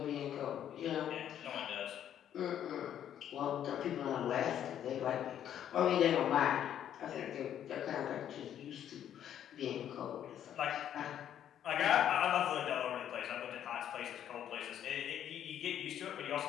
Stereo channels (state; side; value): quieter; right; 10.2 dB